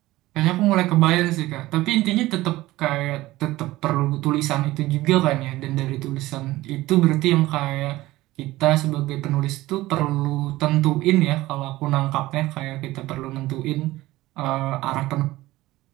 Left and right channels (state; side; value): quieter; left; 17.6 dB